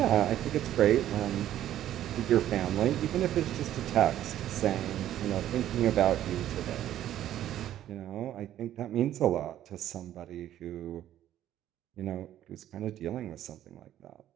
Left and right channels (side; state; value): left; quieter; 12.1 dB